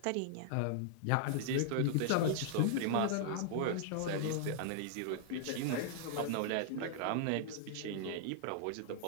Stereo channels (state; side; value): different; both; correlation -0.01